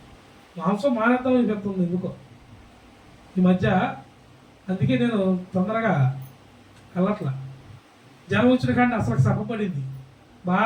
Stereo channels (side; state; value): both; identical; correlation 1.00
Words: మాంసం మానేద్దాం అని చెప్తుంది ఎందుకో ఈ మధ్య. అందుకే నేను తొందరగా వెళ్ళట్లా. జనం వచ్చిన కానీ అసలు సభపడింది